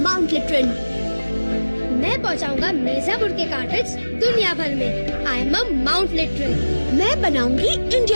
लिटरन। मैं पहुंचाऊंगा मिर्जापुर के कार्टेज दुनिया भर में। I am a Mount Literan. मैं बनाऊंगी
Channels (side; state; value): both; inverted; correlation -1.00